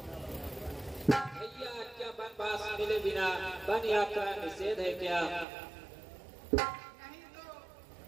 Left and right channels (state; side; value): drops out; left; at 5.5 s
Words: भैया क्या बनवास मिले बिना वन यात्रा निषेध है क्या?